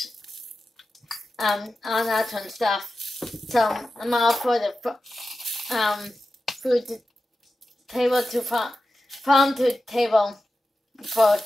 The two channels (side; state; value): both; normal; correlation 0.93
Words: all natural stuff. So I'm all for the food to table to farm to table